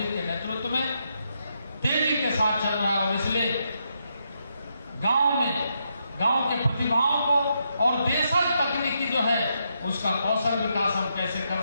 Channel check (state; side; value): inverted; both; correlation -0.80